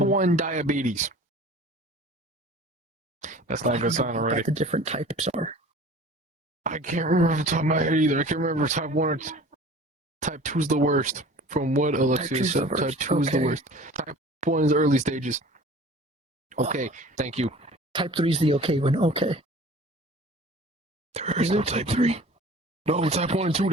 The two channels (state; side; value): normal; both; correlation 0.44